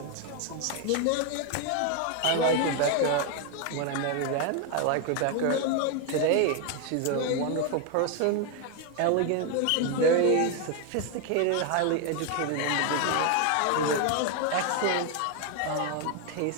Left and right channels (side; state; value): both; different; correlation 0.01